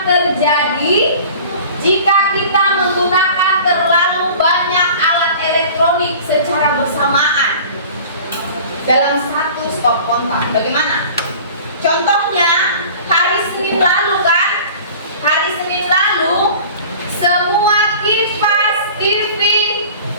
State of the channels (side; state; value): both; inverted; correlation -0.43